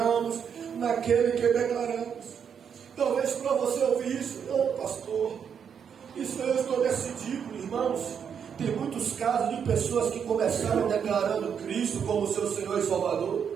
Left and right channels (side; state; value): left; quieter; 7.5 dB